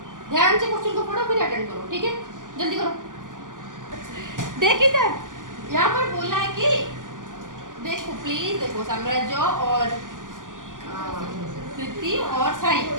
ध्यान से क्वेश्चन को पढ़ो, फिर अटेंड करो, ठीक है। जल्दी करो। देख इधर, यहाँ पर बोला है कि देखो प्लीज देखो, साम्राज्य और कृति और साई,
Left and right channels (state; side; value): late; left; 0.88 ms